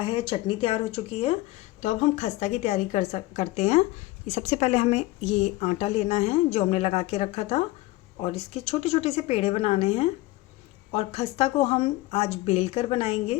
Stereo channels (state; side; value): quieter; right; 18.7 dB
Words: चटनी तैयार हो चुकी है। तो अब हम खस्ता की तैयारी करते हैं। ये सबसे पहले हमें ये आटा लेना है जो हमने लगा के रखा था, और इसके छोटे छोटे से पेड़े बनाने हैं। और खस्ता को हम आज बेल कर